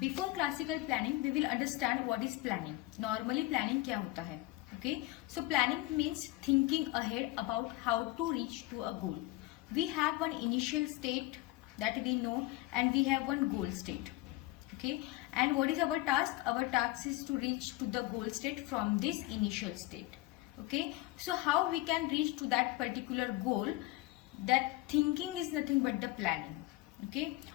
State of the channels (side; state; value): right; quieter; 18.6 dB